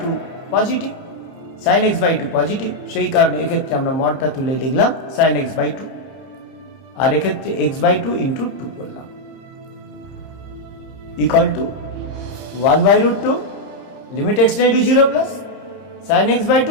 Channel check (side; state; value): right; late; 30 ms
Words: 2 positive, sin x by 2 positive, সেই কারণে এক্ষেত্রে আমরা মডটা তুলে লিখলাম sin x by 2 আর এক্ষেত্রে x by 2 into 2 করলাম equal to 1 by root 2 limit x tends to 0 plus sin x by